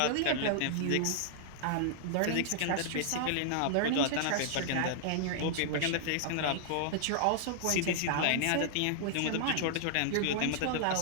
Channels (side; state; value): both; different; correlation -0.01